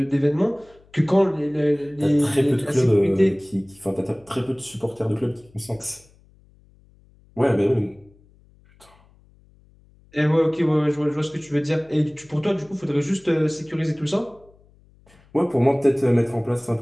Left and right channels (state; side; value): noise; left; hum, 29 dB below the sound